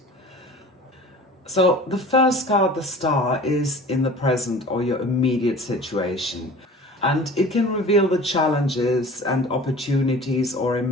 So the first card, the Star, is in the present or your immediate situation. And it can reveal the challenges and opportunities or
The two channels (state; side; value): normal; both; correlation 0.41